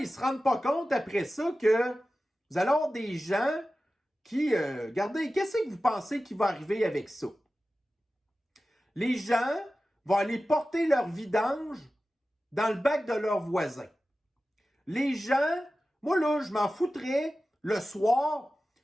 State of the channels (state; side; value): normal; both; correlation 0.95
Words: ne se rendent pas compte après ça que vous allez avoir des gens qui, regardez, qu'est-ce que vous pensez qui va arriver avec ça? Les gens vont aller porter leur vidange dans le bac de leurs voisins. Les gens, moi là, je m'en foutrais le soir